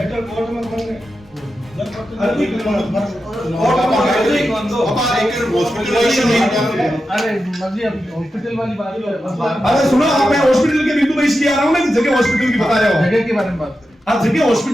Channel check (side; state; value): both; normal; correlation 0.90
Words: कोर्ट में बन गए हॉस्पिटल वाली बात अरे सुनो, आप मैं हॉस्पिटल के बिंदु पे इसलिए आ रहा हूँ ना, जगह हॉस्पिटल की बता रहे हो, जगह के बारे में बात करें। आप जगह